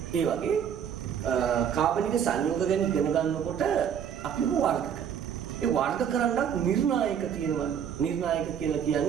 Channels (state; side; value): quieter; left; 8.4 dB